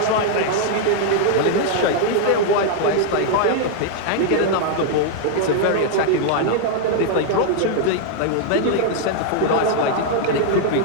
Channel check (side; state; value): both; different; correlation 0.00